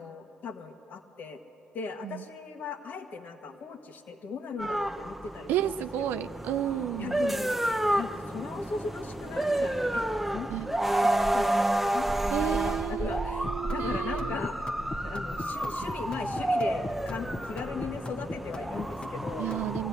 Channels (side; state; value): both; normal; correlation 0.83